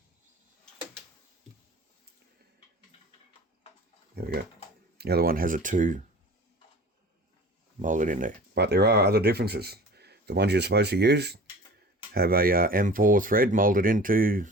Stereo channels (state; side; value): normal; both; correlation 0.41